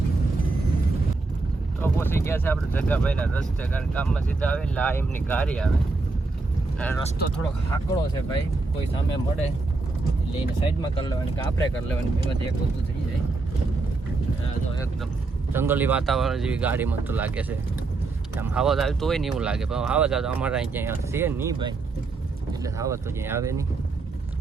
તો પહોંચી ગયા છે આપણે જગાભાઈના રસ્તે કારણ કામમાં સીધા આવે એટલે આ એમની ગાડી આવે અને રસ્તો થોડોક હાકડો છે ભાઈ. કોઈ સામે મળે એટલે એને સાઈડમાં કરી લેવાની કે આપણે કરી લેવાની બેમાંથી એક વસ્તુ થઈ જાય. તો એકદમ જંગલી વાતાવરણ જેવી ગાડી મને તો લાગે છે. આમ આવાજ આવતો હોય ને એવું લાગે પણ આવાજ આવતો અમારે અહીં ક્યાંય છે નહીં ભાઈ એટલે આવાજ તો ક્યાંય આવે નહીં.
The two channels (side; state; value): left; quieter; 3.6 dB